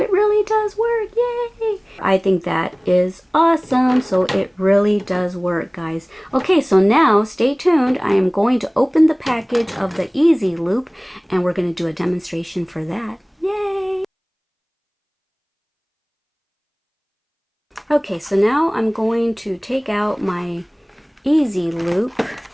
really does work. Yay! I think that is awesome. So it really does work, guys. Okay, so now stay tuned. I am going to open the package of the Easy Loop and we're going to do a demonstration for that. Yay! Okay, so now I'm going to take out my Easy Loop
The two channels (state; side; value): identical; both; correlation 1.00